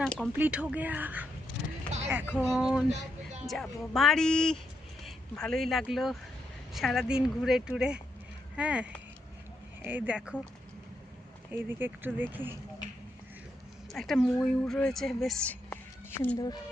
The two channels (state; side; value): normal; both; correlation 0.81